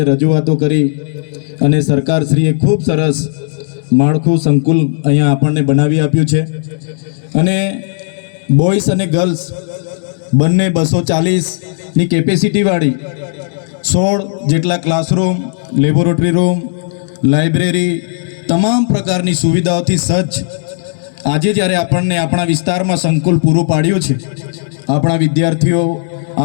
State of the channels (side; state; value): right; silent; digital silence